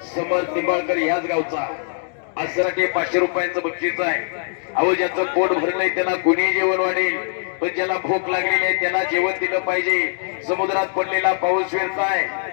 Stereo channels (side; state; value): right; silent; digital silence